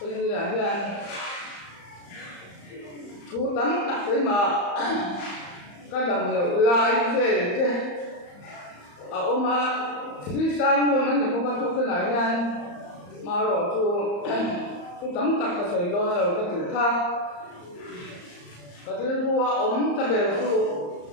tôi như là như anh thu tắm đặt đấy mà các đồng nghiệp lại về thế ông mà khi sang luôn nó cũng có chút cái này nha mà rồi chú tắm tặc cái sợi đôi rồi cái thứ khác cái thứ vua ống ta về chú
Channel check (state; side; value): late; right; 34 ms